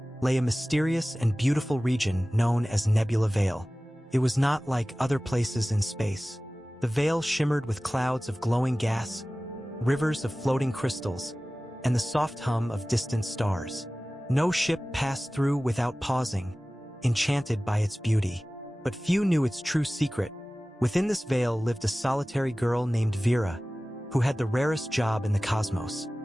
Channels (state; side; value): normal; both; correlation 0.97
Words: lay a mysterious and beautiful region known as Nebula Vale. It was not like other places in space. The veil shimmered with clouds of glowing gas, rivers of floating crystals, and the soft hum of distant stars. No ship passed through without pausing, enchanted by its beauty. But few knew its true secret. Within this veil lived a solitary girl named Vera, who had the rarest job in the cosmos.